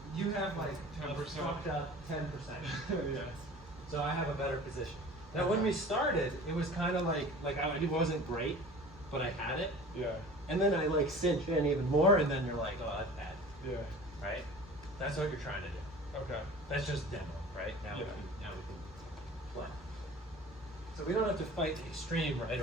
you have like 10%. fucked up 10%. Yeah. So I have a better position. Now when we started, it was kind of like it wasn't great, but I had it. Yeah. And then I like cinch in even more, and then you're like, oh, that's bad, Yeah. right? That's what you're trying to do. Okay. That's just demo, right? Now, Yeah. now we can play. So we don't have to fight the extreme right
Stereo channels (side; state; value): both; normal; correlation 0.41